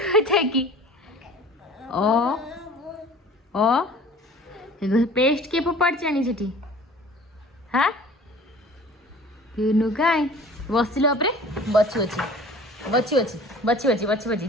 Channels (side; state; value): both; normal; correlation 0.46